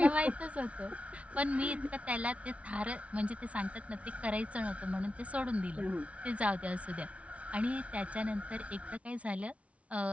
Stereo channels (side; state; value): left; late; 0.064 ms